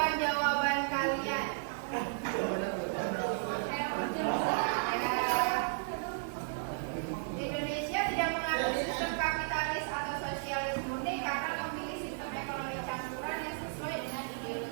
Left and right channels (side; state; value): left; silent; 55 dB below the other